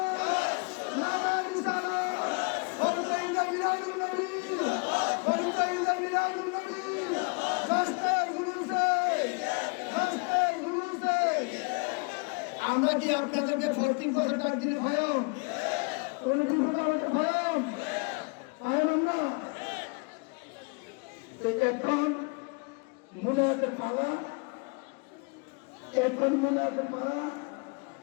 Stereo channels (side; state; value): right; quieter; 31.6 dB